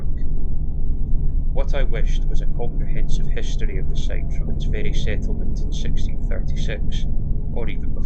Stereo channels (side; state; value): both; identical; correlation 1.00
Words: What I wished was a comprehensive history of the site from its very settlement in 1636, or even